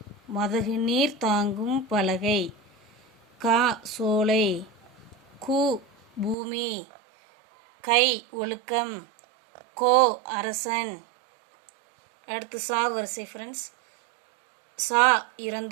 மதகு நீர் தாங்கும் பலகை, கா சோலை, கு பூமி, கை ஒழுக்கம், கோ அரசன். அடுத்து சா வரிசை ஃப்ரெண்ட்ஸ். சா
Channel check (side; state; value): left; drops out; at 6.4 s